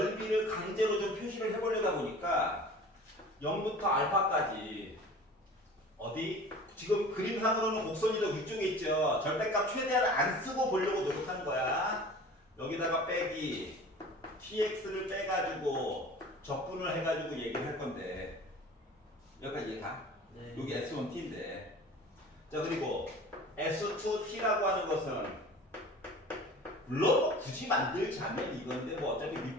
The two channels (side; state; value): both; normal; correlation 0.42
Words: 강제로 좀 표시를 해보려다 보니까 0부터 알파까지 어디? 지금 그림상으로는 곡선이 더 위쪽에 있죠. 절대값 최대한을 안 쓰고 보려고 노력하는 거야. 여기다가 빼기 tx를 빼가지고 적분을 해가지고 얘기를 할 건데 여기까지 이해가? 네. 여기 S1t인데 자, 그리고 S2t라고 하는 것은 물론 굳이 만들자면 이건데 뭐 어차피